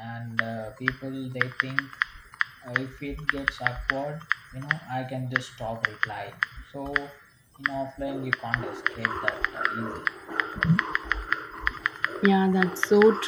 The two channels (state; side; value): identical; both; correlation 1.00